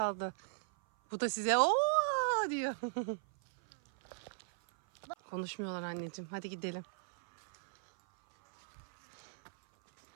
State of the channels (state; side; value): silent; left; 53 dB below the other